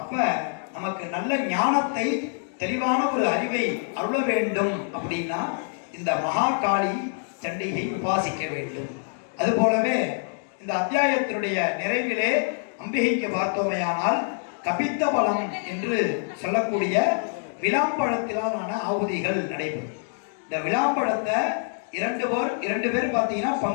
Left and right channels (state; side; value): silent; right; 61 dB below the other